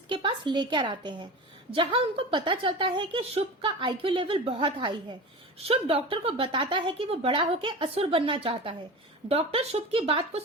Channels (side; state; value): both; normal; correlation 0.30